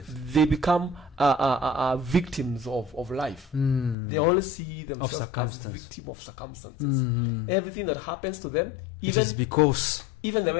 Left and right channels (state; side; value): drops out; right; at 4.0 s